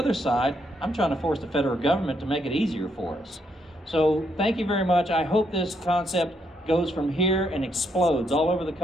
side, I'm trying to force the federal government to make it easier for us. So thank you very much. I hope this concept goes from here and explodes all over the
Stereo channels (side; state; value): both; normal; correlation 0.76